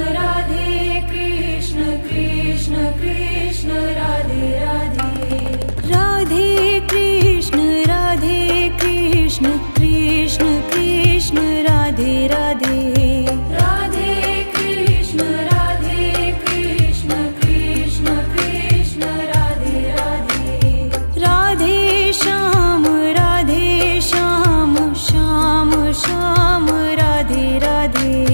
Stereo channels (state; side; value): inverted; both; correlation -1.00